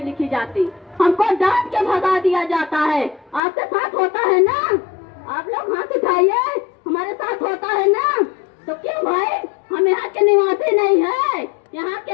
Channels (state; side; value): drops out; right; at 3.4 s